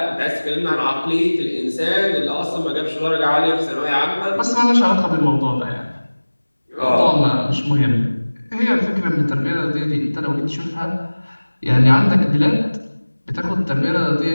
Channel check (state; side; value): inverted; both; correlation -1.00